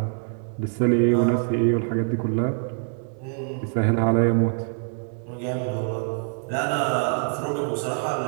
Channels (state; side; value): silent; left; digital silence